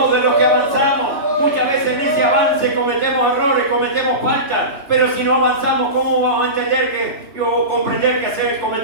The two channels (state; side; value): late; left; 2.9 ms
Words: de los que avanzamos. Muchas veces en ese avance cometemos errores, cometemos faltas. Pero si no avanzamos, ¿cómo vamos a entender o comprender que